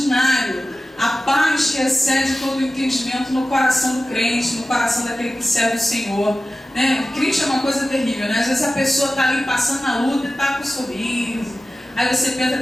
a paz que excede todo o entendimento no coração do crente, no coração daquele que serve o Senhor, né? O crente é uma coisa terrível, né? Às vezes a pessoa está ali passando na luta e está com um sorriso. Aí você pensa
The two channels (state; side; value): normal; both; correlation 0.95